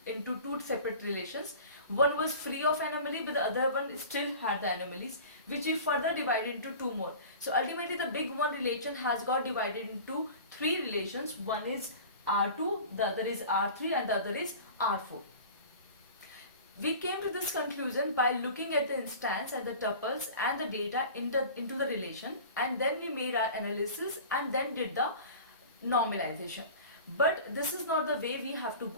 into two separate relations. One was free of anomaly, but the other one still had the anomalies, which we further divided into two more. So ultimately the big one relation has got divided into three relations. One is R2, the other is R3, and the other is R4. We came to this conclusion by looking at the instance and the tuples and the data into the relation, and then we made our analysis and then did the normalization. But this is not the way we have to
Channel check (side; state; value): both; inverted; correlation -0.39